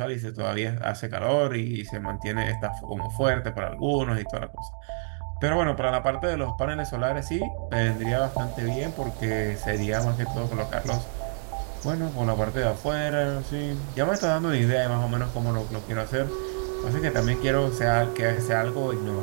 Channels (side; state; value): left; silent; 60 dB below the other